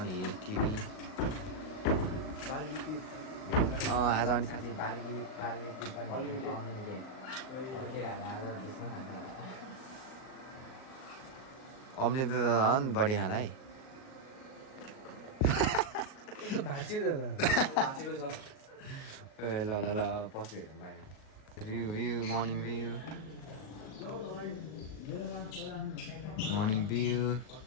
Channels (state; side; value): late; right; 38 ms